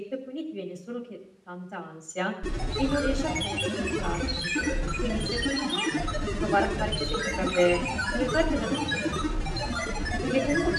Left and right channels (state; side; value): identical; both; correlation 1.00